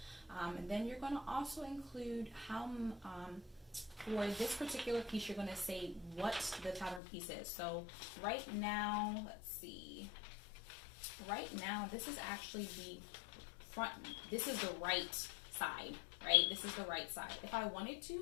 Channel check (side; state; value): right; drops out; at 7.0 s